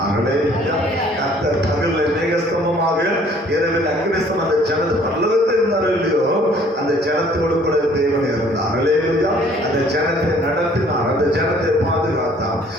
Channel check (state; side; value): normal; both; correlation 0.57